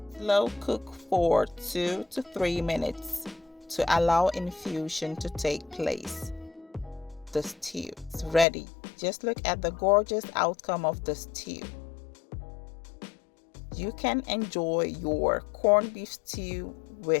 Slow cook for 2 to 3 minutes to allow infusion to take place. The stew is ready. Just look at the gorgeous outcome of the stew. You can enjoy your corned beef stew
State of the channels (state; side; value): drops out; right; at 8.5 s